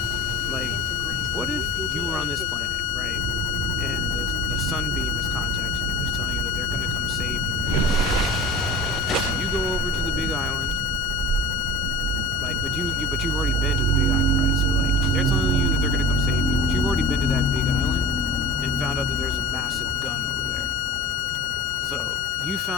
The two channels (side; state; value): both; normal; correlation 0.33